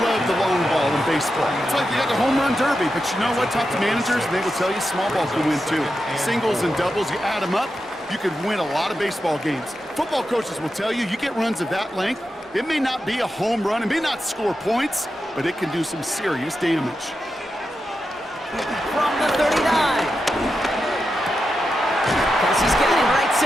love the long ball in baseball. It's like you got the home run derby, but you know what? Talk to managers, and they will tell you small ball can win too. Singles and doubles, you add them up, you could win a lot of baseball games. Football coaches will tell you, you get runs of that length, it may not be a home run, it may not score points, but it can do some serious damage. From the 39. Kelsey's got him right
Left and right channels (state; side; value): normal; both; correlation 0.89